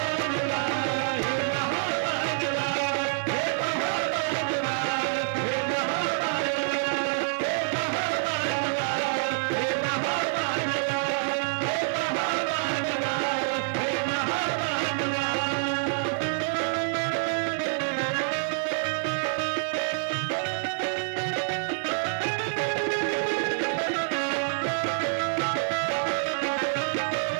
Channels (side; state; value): left; silent; 60 dB below the other